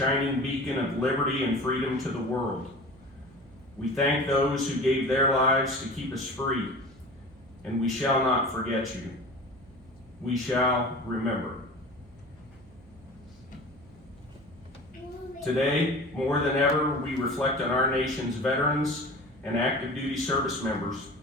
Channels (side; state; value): right; noise; hum, 25 dB below the sound